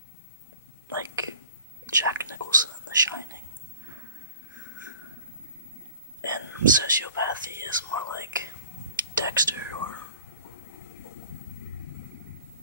like Jack Nicholson in The Shining, and sociopathy is more like Dexter,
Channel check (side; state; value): both; inverted; correlation -0.49